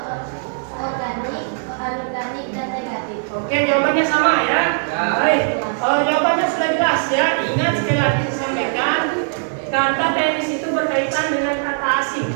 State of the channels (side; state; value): left; silent; digital silence